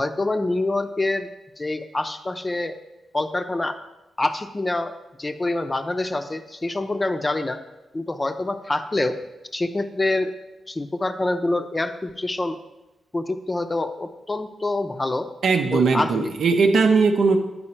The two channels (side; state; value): both; normal; correlation 0.89